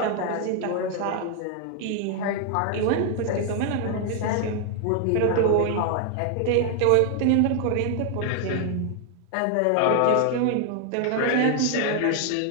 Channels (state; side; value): different; both; correlation 0.00